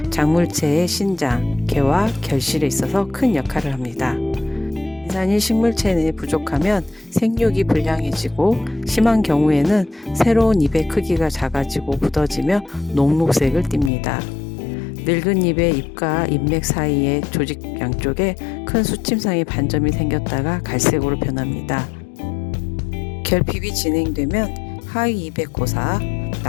작물체의 신장, 개와 결실에 있어서 큰 역할을 합니다. 인산이 식물체 내에 부족하면 생육이 불량해지고 심한 경우에는 새로운 잎의 크기가 작아지고 굳어지며 녹록색을 띱니다. 늙은 잎의 잎과 잎맥 사이의 조직 양쪽에 큰 수침상의 반점이 생겼다가 갈색으로 변합니다. 결핍이 진행되면 하위 잎의 고사,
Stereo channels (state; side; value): drops out; right; at 13.9 s